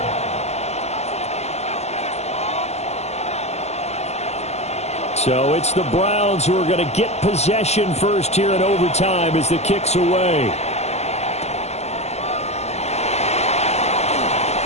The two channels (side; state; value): right; late; 0.32 ms